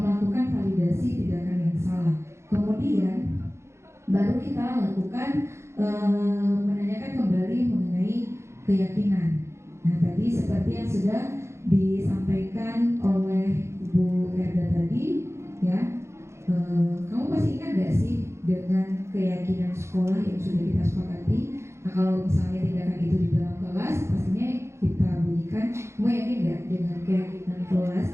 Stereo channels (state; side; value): late; left; 0.13 ms